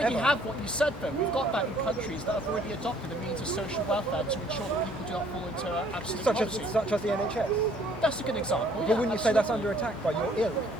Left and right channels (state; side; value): normal; both; correlation 0.60